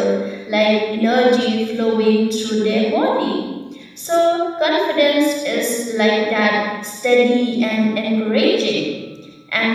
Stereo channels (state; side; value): identical; both; correlation 1.00